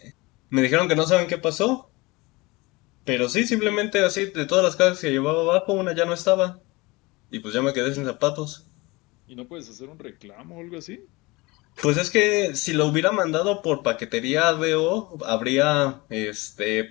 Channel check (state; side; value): quieter; right; 23.6 dB